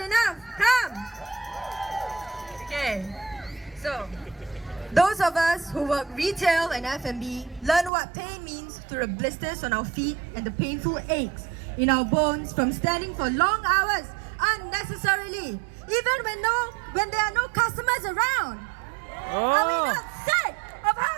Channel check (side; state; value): left; drops out; at 7.9 s